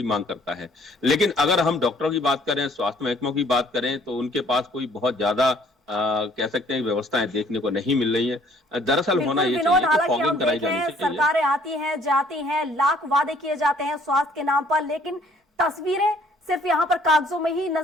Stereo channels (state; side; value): normal; both; correlation 0.59